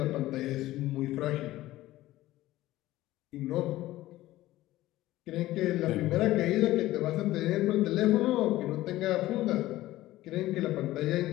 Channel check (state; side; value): quieter; right; 16.1 dB